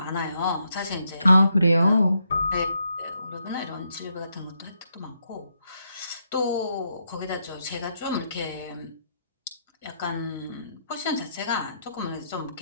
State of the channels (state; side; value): inverted; both; correlation -0.78